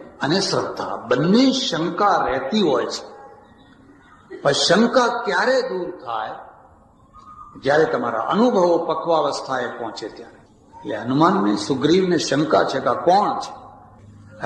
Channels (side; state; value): both; identical; correlation 1.00